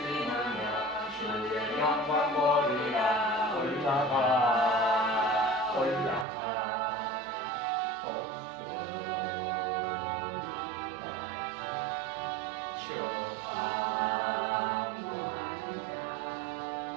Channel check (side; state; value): left; drops out; at 6.2 s